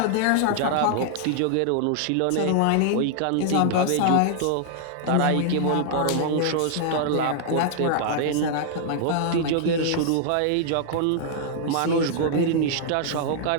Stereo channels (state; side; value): different; both; correlation -0.01